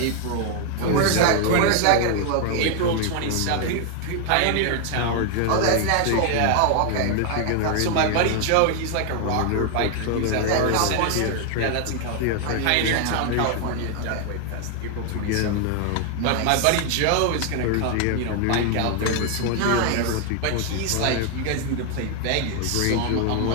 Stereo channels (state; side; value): different; both; correlation 0.00